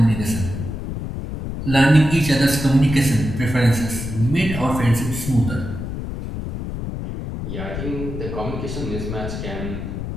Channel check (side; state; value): left; noise; rumble, 6 dB below the sound